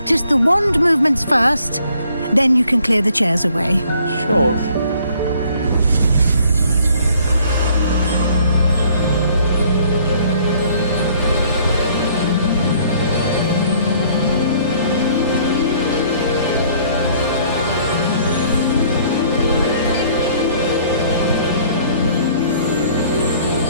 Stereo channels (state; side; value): inverted; both; correlation -0.60